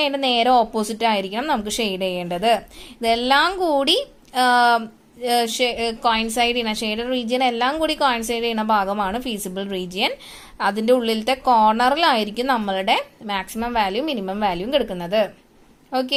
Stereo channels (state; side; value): identical; both; correlation 1.00